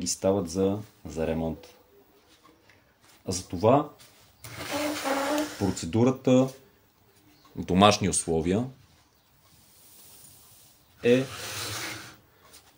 стават за ремонт. А затова процедурата в домашни условия е:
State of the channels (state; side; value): identical; both; correlation 1.00